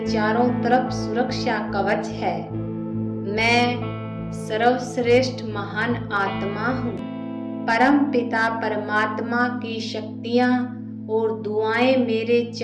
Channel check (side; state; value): both; identical; correlation 1.00